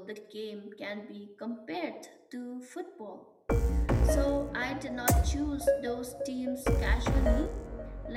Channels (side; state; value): both; identical; correlation 1.00